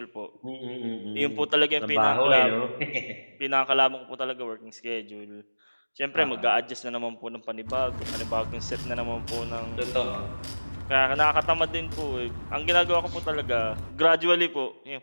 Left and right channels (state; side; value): inverted; both; correlation -1.00